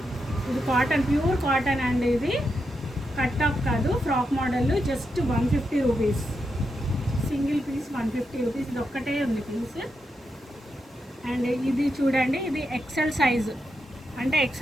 ఇది కాటన్, ప్యూర్ కాటన్ అండి. ఇది కట్ టాప్ కాదు, frock model. Just 150 rupees, single piece 150 rupees. ఇది ఒక్కటే ఉంది పీస్. అండ్ ఇది చూడండి, ఇది ఎక్సెల్ సైజు. అంటే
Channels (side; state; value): both; normal; correlation 0.85